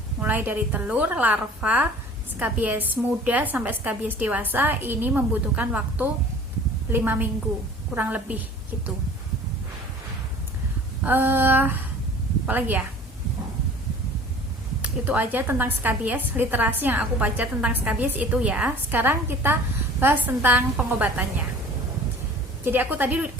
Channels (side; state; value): both; normal; correlation 0.46